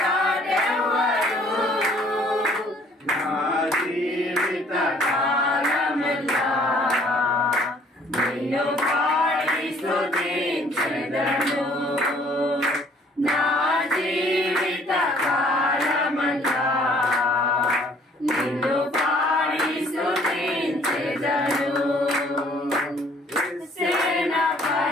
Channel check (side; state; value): both; normal; correlation 0.59